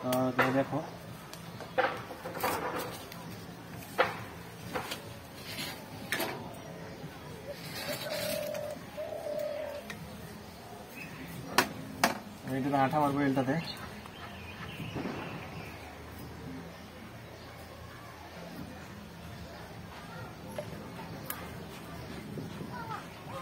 তোমরা দেখো, আঠা মারবো এলটাতে।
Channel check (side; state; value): left; noise; hum, 28 dB below the sound